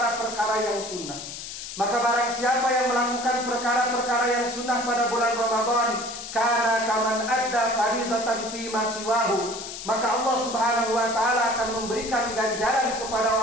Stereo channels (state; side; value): noise; left; hiss, 9 dB below the sound